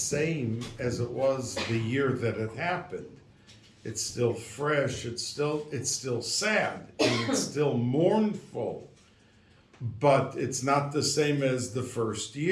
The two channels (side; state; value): both; identical; correlation 1.00